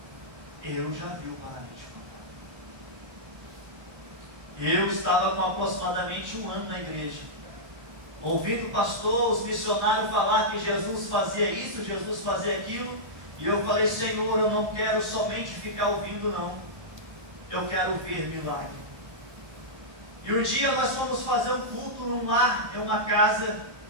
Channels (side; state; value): left; late; 1.2 ms